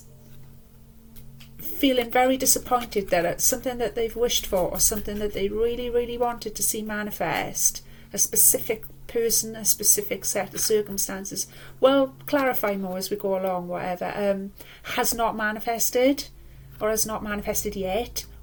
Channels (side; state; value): both; identical; correlation 1.00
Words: feeling very disappointed that it's something that they've wished for or something that they really, really wanted to see manifest, a specific person, a specific set of circumstances, we'll clarify more as we go along, whatever, has not manifested, or has not manifested yet,